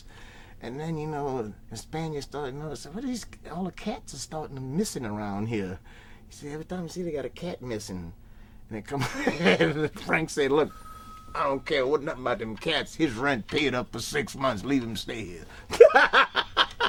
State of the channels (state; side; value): identical; both; correlation 1.00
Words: And then, you know, the Spaniards started noticing, what are these, all the cats are starting missing around here. He said, every time you see they got a cat missing. And they come, and Frank said, look, I don't care what nothing about them cats. His rent paid up for 6 months. Leave him stay here.